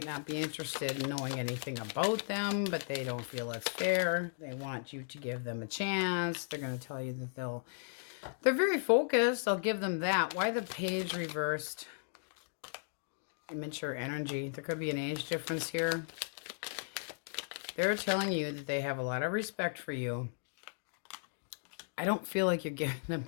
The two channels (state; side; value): silent; right; digital silence